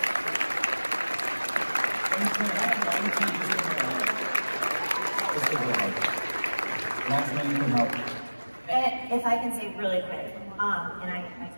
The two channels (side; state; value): both; inverted; correlation -1.00